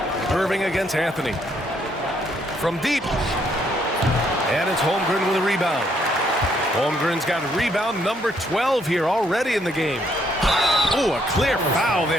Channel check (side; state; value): both; normal; correlation 0.71